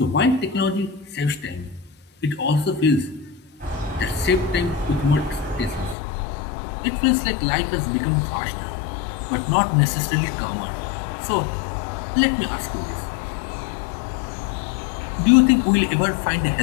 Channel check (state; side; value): drops out; right; at 6.0 s